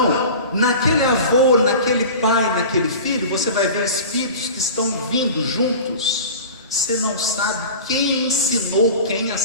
naquele avô, naquele pai, naquele filho, você vai ver espíritos que estão vindo juntos. Você não sabe quem ensinou quem a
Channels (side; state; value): both; inverted; correlation -0.35